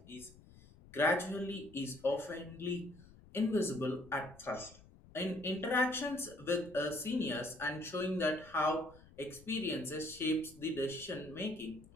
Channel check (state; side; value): noise; left; rumble, 22 dB below the sound